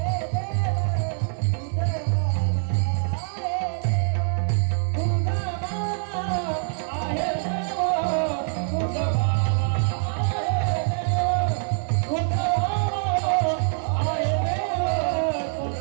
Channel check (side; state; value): left; silent; 62 dB below the other